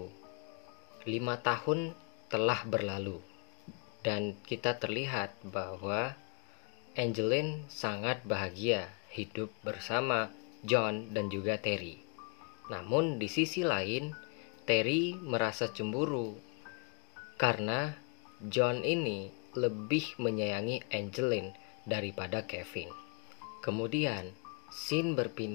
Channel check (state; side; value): quieter; right; 37.0 dB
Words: 5 tahun telah berlalu dan kita terlihat bahwa Angeline sangat bahagia hidup bersama John dan juga Terry. Namun di sisi lain, Terry merasa cemburu karena John ini lebih menyayangi Angeline daripada Kevin. Kemudian scene